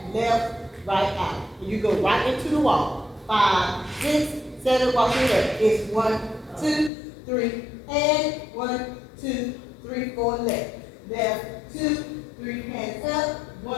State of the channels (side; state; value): right; drops out; at 6.9 s